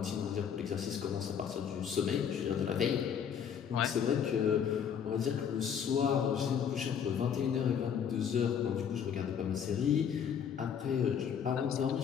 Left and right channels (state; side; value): quieter; right; 7.9 dB